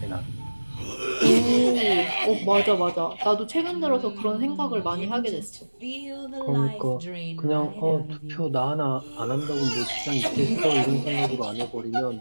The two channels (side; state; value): both; inverted; correlation -1.00